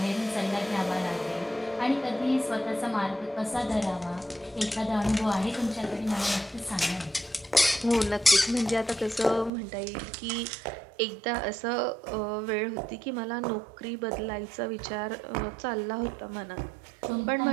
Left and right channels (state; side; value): drops out; left; at 9.5 s